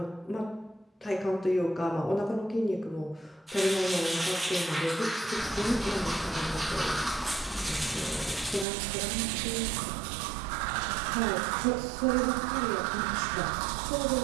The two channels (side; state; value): left; drops out; at 8.7 s